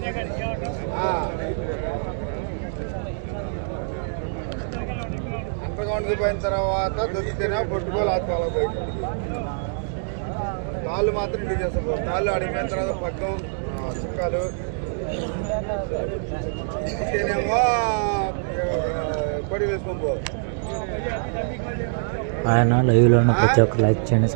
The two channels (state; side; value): silent; left; digital silence